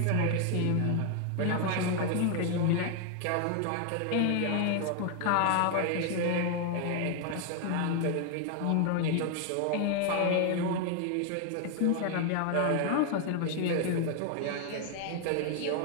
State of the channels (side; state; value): both; different; correlation 0.00